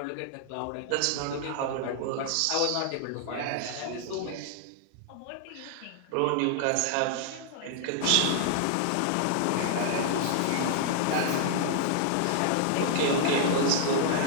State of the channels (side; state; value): both; different; correlation 0.00